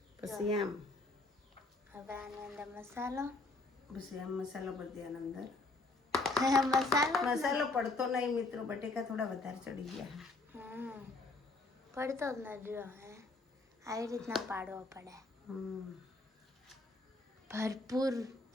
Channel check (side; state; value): right; quieter; 3.2 dB